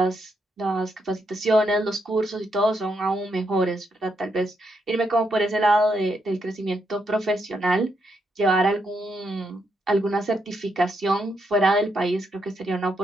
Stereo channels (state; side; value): normal; both; correlation 0.79